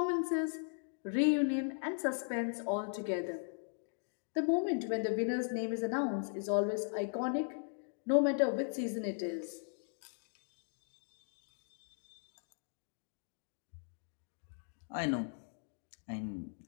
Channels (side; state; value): right; silent; digital silence